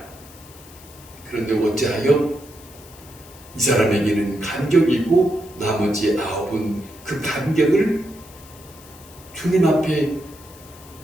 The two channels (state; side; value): noise; left; hiss, 21 dB below the sound